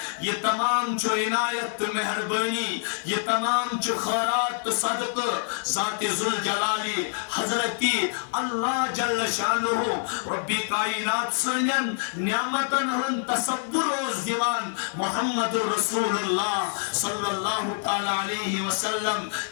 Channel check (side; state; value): right; silent; digital silence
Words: یہ تمام جو عنایت مہربانی یہ تمام جو خیرات صدق ذات ذوالجلالی حضرتی اللہ جل شانہ ربی کائنات سنن نعمتن ہن تصور روز دیوان محمد رسول اللہ صلی اللہ تعالی علیہ وسلم